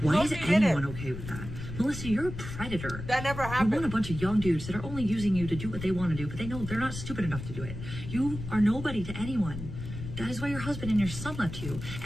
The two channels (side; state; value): left; noise; rumble, 9 dB below the sound